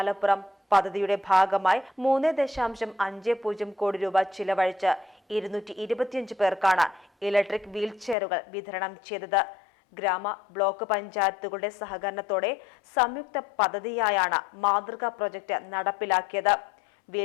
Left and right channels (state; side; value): drops out; right; at 8.2 s